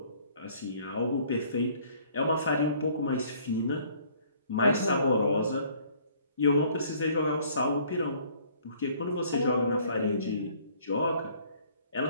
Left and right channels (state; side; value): inverted; both; correlation -0.58